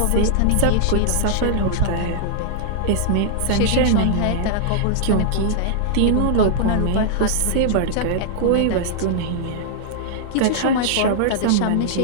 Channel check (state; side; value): different; both; correlation -0.01